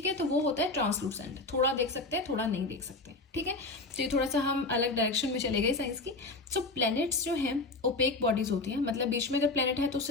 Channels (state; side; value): quieter; right; 3.3 dB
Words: है, तो वो होता है ट्रांसलूसेंट। थोड़ा देख सकते हैं, थोड़ा नहीं देख सकते, ठीक है। तो ये थोड़ा सा हम अलग डायरेक्शन में चले गए साइंस की। सो प्लैनेट्स जो हैं ओपेक बॉडीज होती हैं, मतलब बीच में अगर प्लैनेट है तो